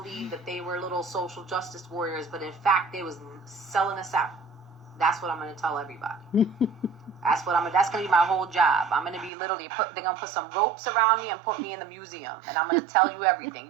that they were little social justice warriors, but in fact they was selling us out. That's what I'm going to tell everybody. That's going to be my whole job. I'm going to be literally, they're going to put some ropes around me and put me in the museum. And I'm going to tell you everything.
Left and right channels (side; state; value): left; drops out; at 9.3 s